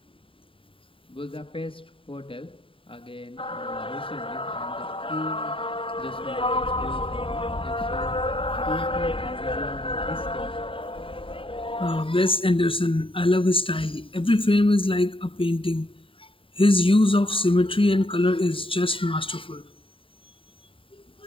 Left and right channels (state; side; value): late; right; 0.25 ms